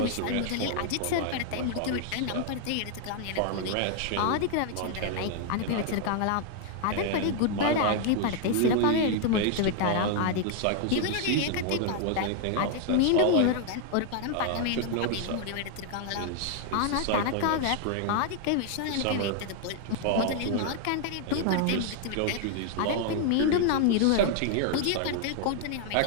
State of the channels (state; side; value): different; both; correlation 0.00